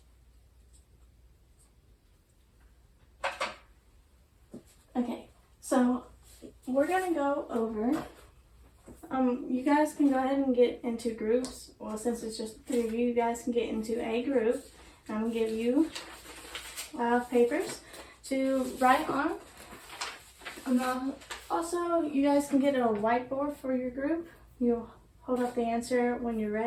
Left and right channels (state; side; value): identical; both; correlation 1.00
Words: Okay, so we're gonna go over, you guys can go ahead and get into groups. Well, since it's just 3 of you, you guys can get into a group. I'm gonna give you papers to write on. Also, you guys can get a whiteboard for your group. You'll hold up the answer when you're